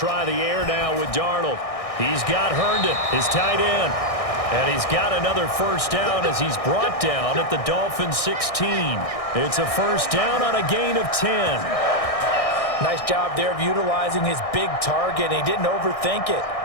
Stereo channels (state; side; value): late; right; 1.6 ms